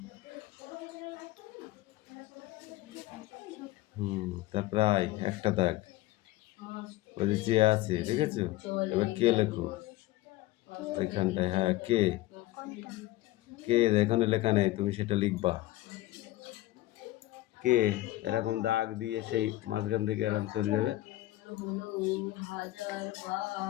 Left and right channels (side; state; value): right; quieter; 17.0 dB